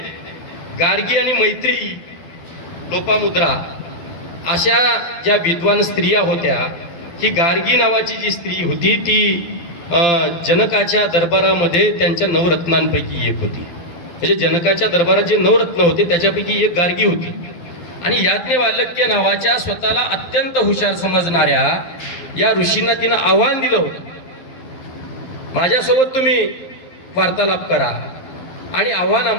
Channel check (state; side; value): late; right; 12 ms